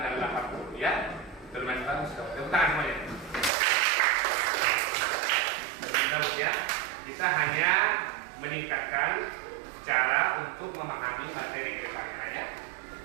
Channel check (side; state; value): left; drops out; at 3.5 s